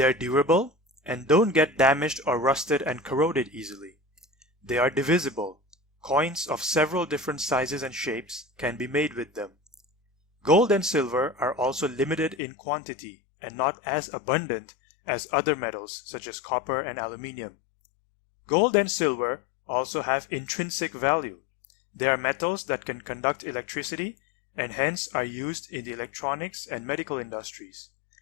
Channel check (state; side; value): drops out; right; at 12.4 s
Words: are durable and don't get damaged or rusted and corroded easily. They are divisible. Coins of several different sizes and shapes can be made with them. Gold and silver are also limited in quantity and not as abundant as other metals such as copper and aluminium. Gold and silver also have intrinsic value. They are metals that can conduct electricity and hence are used in the electronics and medical industries.